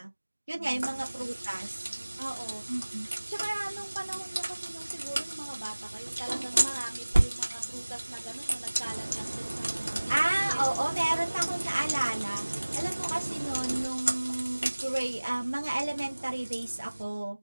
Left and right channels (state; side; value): inverted; both; correlation -1.00